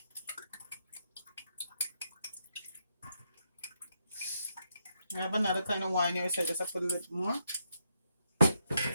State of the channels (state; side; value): inverted; both; correlation -0.80